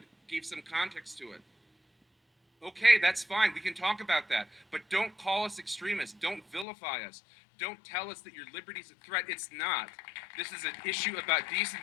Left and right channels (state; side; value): drops out; right; at 6.7 s